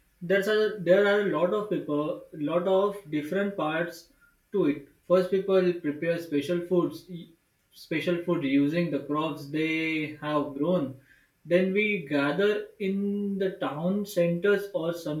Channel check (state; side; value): identical; both; correlation 1.00